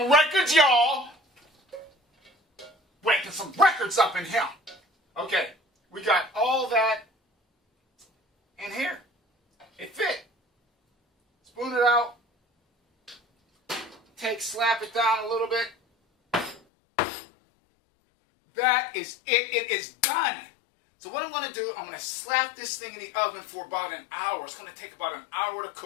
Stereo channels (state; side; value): drops out; right; at 16.6 s